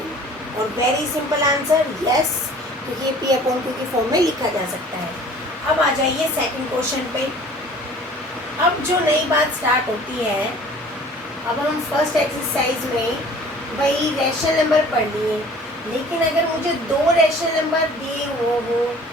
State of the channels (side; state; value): both; normal; correlation 0.48